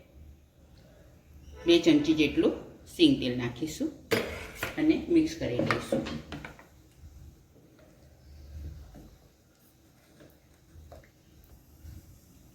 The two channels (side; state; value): both; identical; correlation 1.00